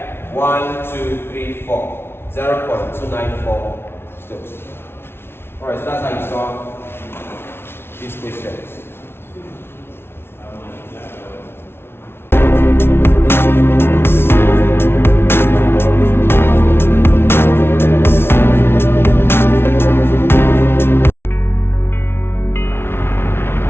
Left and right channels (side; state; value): right; late; 0.12 ms